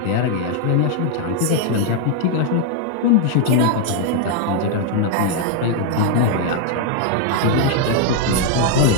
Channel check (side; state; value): both; different; correlation 0.00